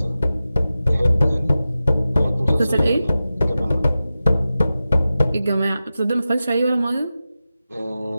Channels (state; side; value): inverted; both; correlation -0.94